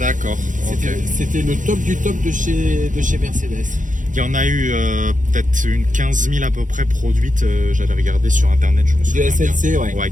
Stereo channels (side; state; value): left; late; 0.37 ms